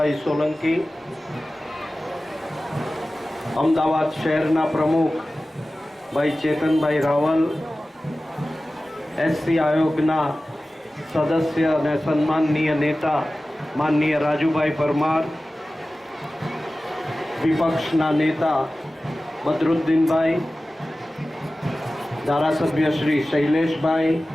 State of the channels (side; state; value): both; normal; correlation 0.96